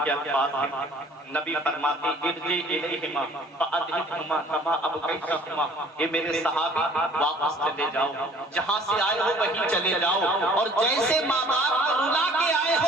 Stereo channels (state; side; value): normal; both; correlation 0.53